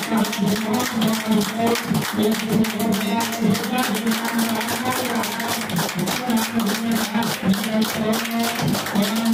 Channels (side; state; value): both; identical; correlation 1.00